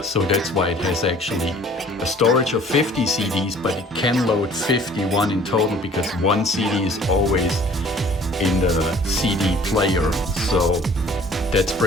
So that's why it has actually a storage of 50 CDs, but it can load 51 in total because 1 CD is always in the CD player. So that's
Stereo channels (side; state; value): both; normal; correlation 0.52